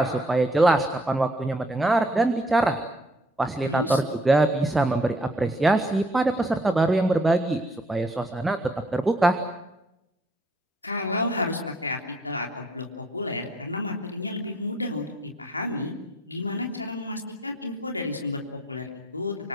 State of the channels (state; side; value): normal; both; correlation 0.64